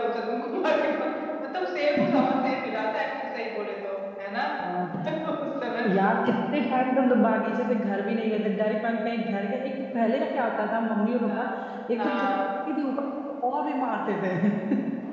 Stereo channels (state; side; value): identical; both; correlation 1.00